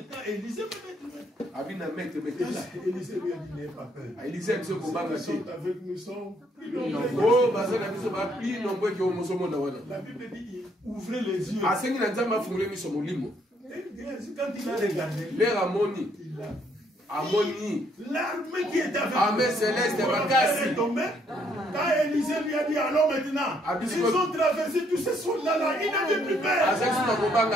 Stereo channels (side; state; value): both; normal; correlation 0.69